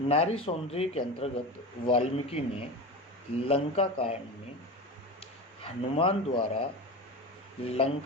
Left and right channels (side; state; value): both; normal; correlation 0.26